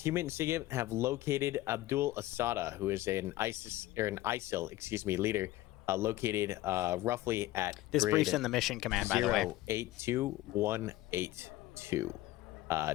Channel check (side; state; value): right; quieter; 16.4 dB